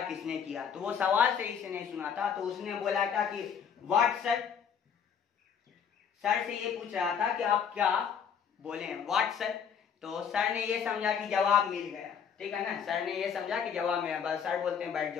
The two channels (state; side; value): quieter; right; 7.4 dB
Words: किसने किया? तो वो सवाल सही से नहीं सुना था, तो उसने बोला था कि व्हाट सर। सर से ये पूछ रहा था कि आप क्या बोले? What sir. तो सर ने ये समझा कि जवाब मिल गया, ठीक है ना। सर ने ये समझा कि जवाब मिला, बस सर बोलते हैं बैठ